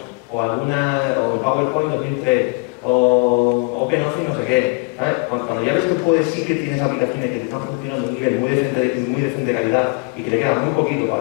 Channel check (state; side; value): quieter; right; 31.8 dB